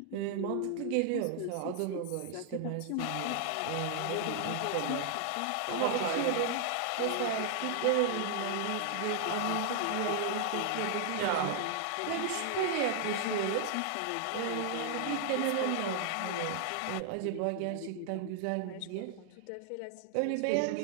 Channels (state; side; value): different; both; correlation 0.00